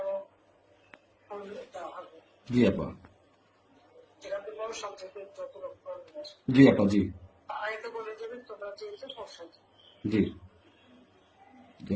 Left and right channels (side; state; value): both; identical; correlation 1.00